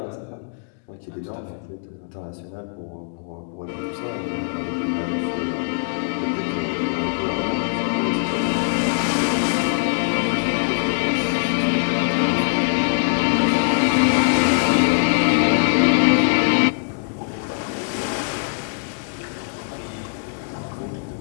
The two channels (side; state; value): right; silent; digital silence